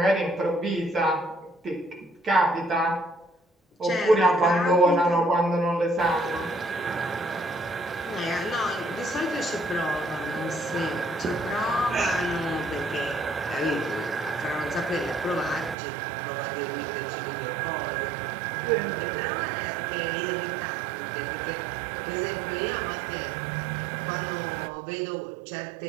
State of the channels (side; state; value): left; drops out; at 15.8 s